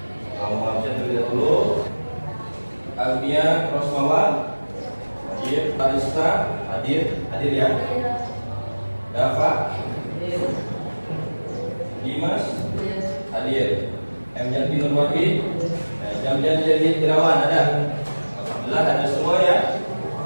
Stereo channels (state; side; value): inverted; both; correlation -1.00